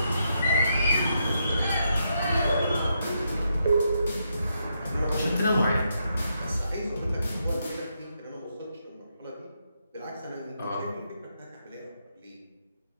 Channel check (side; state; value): both; inverted; correlation -0.80